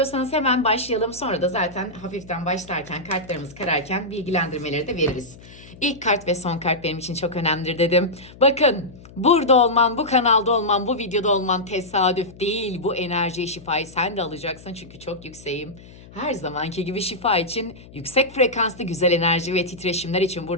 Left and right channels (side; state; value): left; noise; hum, 20 dB below the sound